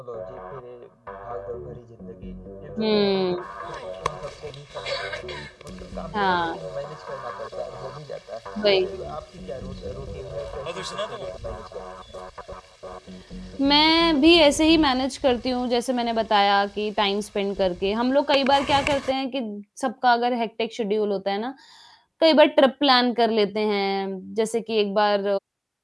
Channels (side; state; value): both; identical; correlation 1.00